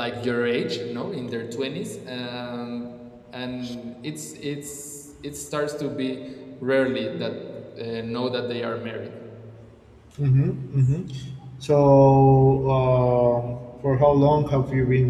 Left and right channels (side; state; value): both; identical; correlation 1.00